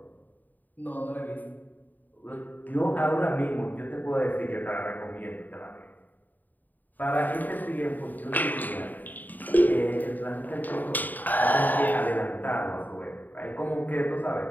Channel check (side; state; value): right; late; 0.085 ms